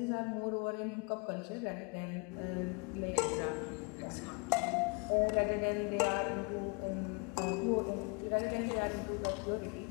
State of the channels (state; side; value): quieter; right; 32.0 dB